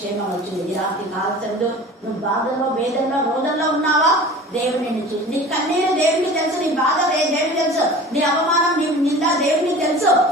వచ్చింది. ఈ రాత్రి కాల్చండు, నువ్వు బాధల్లో, వేదనలో, రోదల్లో ఉన్నావా? దేవుడు నిన్ను చూసి, నీ కన్నీరు దేవుడికి తెలుసు, నీ బాధ దేవుడికి తెలుసు, నీ అవమానం, నీ నింద దేవుడికి తెలుసు.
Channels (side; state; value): both; normal; correlation 0.40